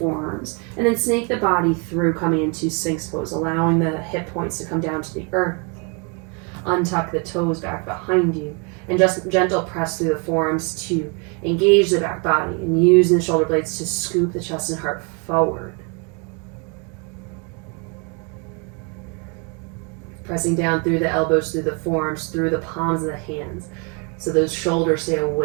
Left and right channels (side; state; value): left; quieter; 33.4 dB